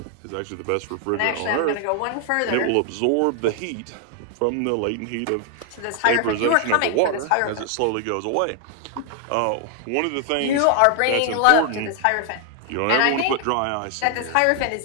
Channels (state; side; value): different; both; correlation 0.00